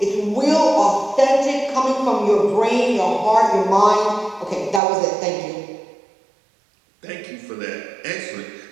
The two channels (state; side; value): drops out; left; at 4.8 s